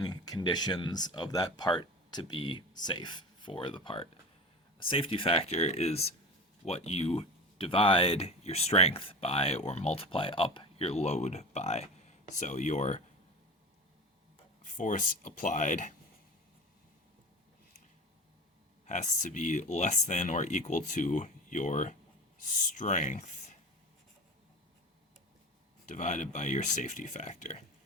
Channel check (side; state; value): both; normal; correlation 0.32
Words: conditions of that part to be safe for the part. A safety factor is what you divide your strength by or multiply up your load by. So your force applied has to be less than or equal to your strength divided by your safety factor.